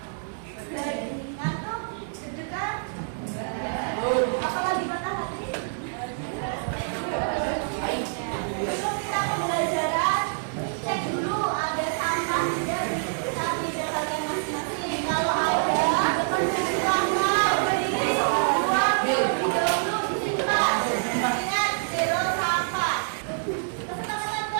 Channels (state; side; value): silent; left; 60 dB below the other